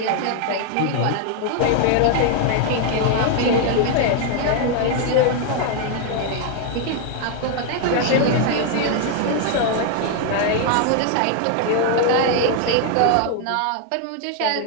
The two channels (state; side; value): different; both; correlation 0.00